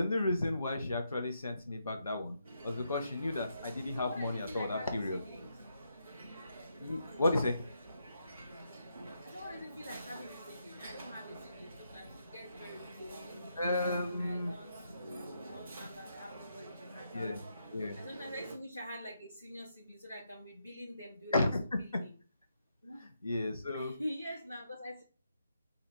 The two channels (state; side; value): inverted; both; correlation -0.80